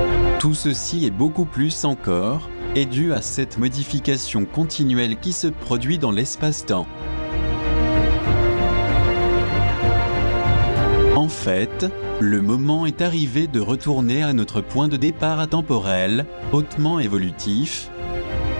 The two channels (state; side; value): inverted; both; correlation -1.00